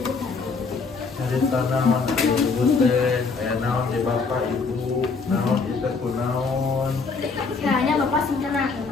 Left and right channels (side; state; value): right; quieter; 4.6 dB